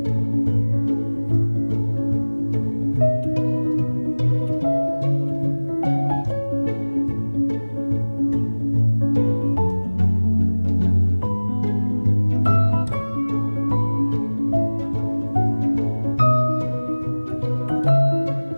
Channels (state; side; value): inverted; both; correlation -1.00